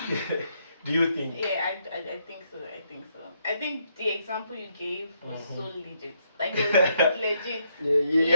Do you think? Yeah, I think so. I think the example you gave was so legit. Like it was legit.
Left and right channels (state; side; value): inverted; both; correlation -0.76